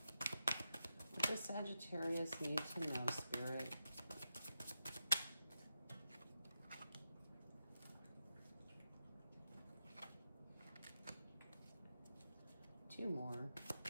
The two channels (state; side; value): inverted; both; correlation -0.89